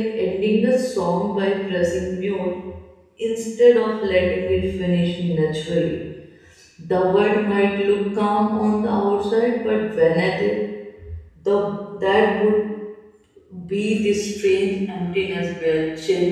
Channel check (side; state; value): both; identical; correlation 1.00